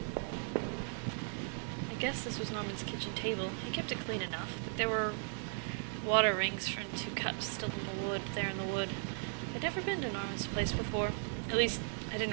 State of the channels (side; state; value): left; silent; 53 dB below the other